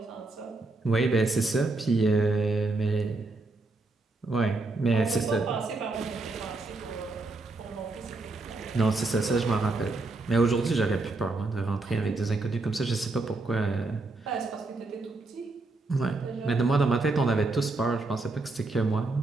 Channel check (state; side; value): quieter; left; 3.3 dB